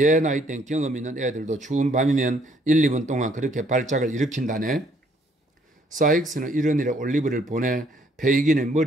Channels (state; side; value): normal; both; correlation 0.66